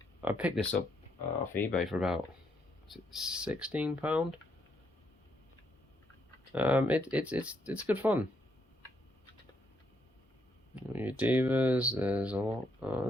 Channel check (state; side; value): normal; both; correlation 0.76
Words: I picked this up off eBay for about, is it £16? It's good fun. Your divas, there's a lot.